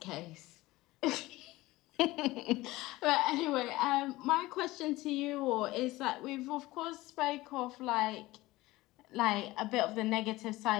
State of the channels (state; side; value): quieter; right; 18.9 dB